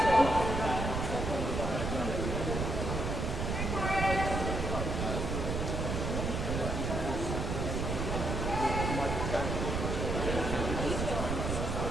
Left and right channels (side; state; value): right; noise; rumble, 1 dB below the sound